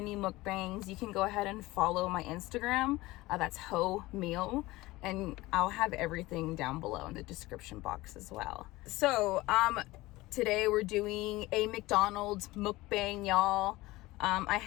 mukbangs, you can go ahead and follow my Instagram. That's Ho Meal, and I'll have everything down below in the description box as well. So today we're doing a McDonald's mukbang, y'all. I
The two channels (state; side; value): quieter; right; 19.5 dB